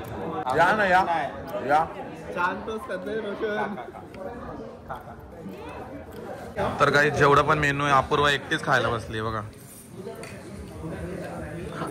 या ना या तर काही जेवढं पण मेनू आहे अपूर्वा एकटीच खायला बसली बघा.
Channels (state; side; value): identical; both; correlation 1.00